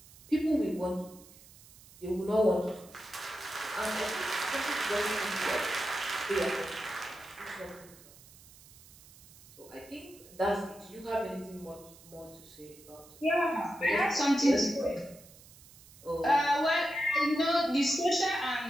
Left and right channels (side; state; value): right; noise; hiss, 22 dB below the sound